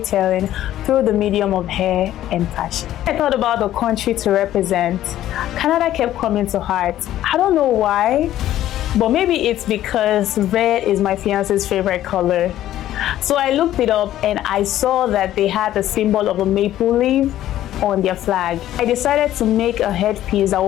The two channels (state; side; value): quieter; right; 12.9 dB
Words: through the medium of hair and fashion. I thought about the country to represent. Canada kept coming to heart. I don't know why, but maybe it's because red is my fiance's favorite color. So I looked it up and I saw that they had the symbol of a maple leaf on their flag. I decided to make a headpiece that